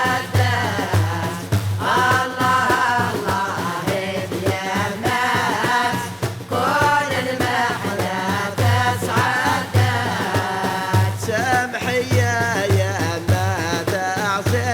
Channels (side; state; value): both; identical; correlation 1.00